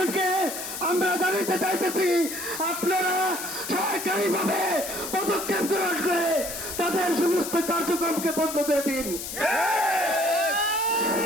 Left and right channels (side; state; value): left; noise; hiss, 7 dB below the sound